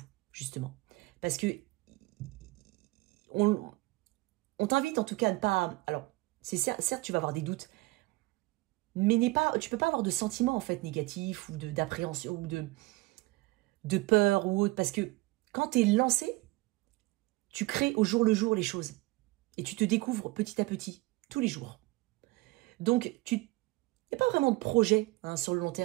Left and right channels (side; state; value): left; quieter; 21.4 dB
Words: justement. Parce que on t'invite en tout cas à ne pas... Alors, certes, tu vas avoir des doutes, mais tu peux pas avoir de sentiments en fait négatifs ou d'appréhension ou de peur ou autre. Parce que quand tu es lancé, tu crées au jour le jour les choses. Et tu te découvres petit à petit, tous les jours. Donc, il n'y a pas vraiment de projet sur le long